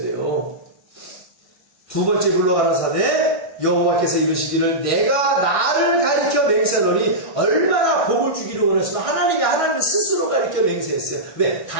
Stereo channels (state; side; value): late; right; 1.6 ms